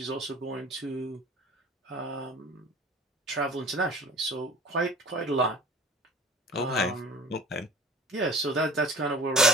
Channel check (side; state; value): both; normal; correlation 0.42